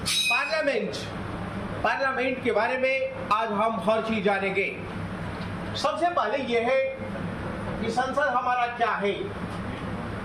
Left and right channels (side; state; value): both; identical; correlation 1.00